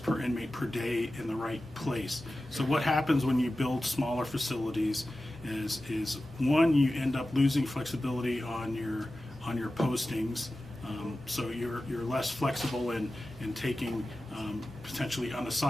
per inmate per day in the right place. So what happens when you build smaller facilities is one, you end up losing flexibility on your postings. So you're less flexible in taking potentially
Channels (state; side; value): normal; both; correlation 0.94